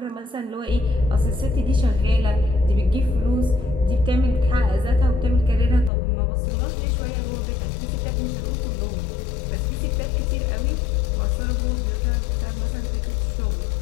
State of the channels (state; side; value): drops out; right; at 5.9 s